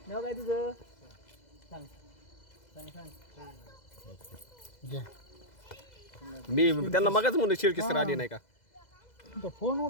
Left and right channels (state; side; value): late; right; 2.0 ms